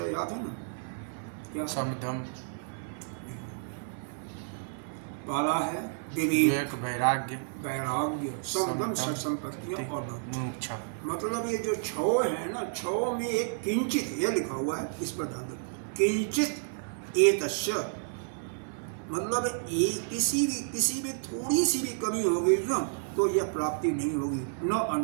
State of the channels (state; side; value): silent; left; 57 dB below the other